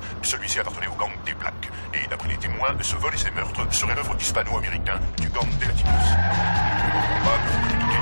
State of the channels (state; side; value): inverted; both; correlation -1.00